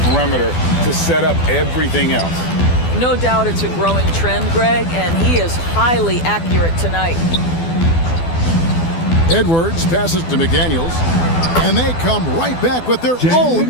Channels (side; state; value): right; late; 12 ms